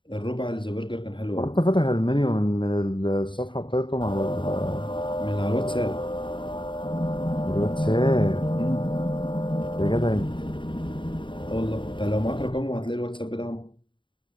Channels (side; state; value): right; late; 0.24 ms